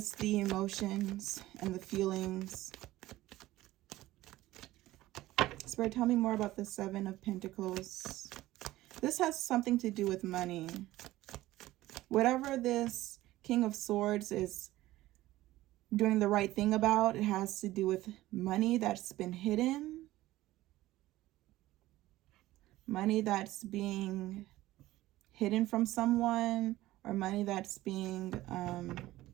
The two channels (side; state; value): left; quieter; 16.4 dB